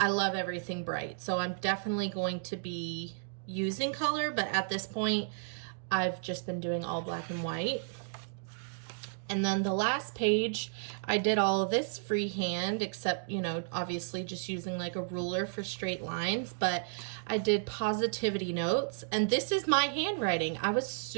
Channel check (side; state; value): left; silent; digital silence